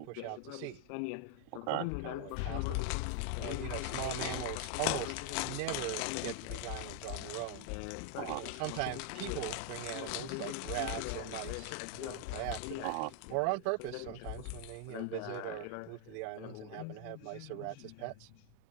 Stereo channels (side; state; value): both; different; correlation 0.00